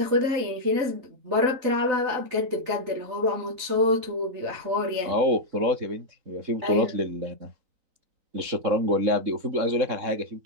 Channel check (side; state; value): left; late; 3.9 ms